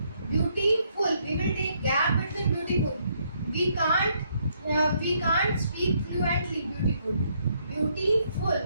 beautiful. We will take gap between beautiful. We can't speak fluently beautiful.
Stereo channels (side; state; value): both; inverted; correlation -0.72